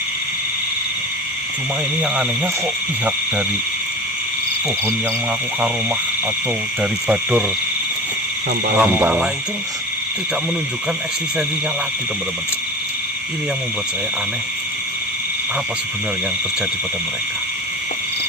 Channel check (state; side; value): normal; both; correlation 0.32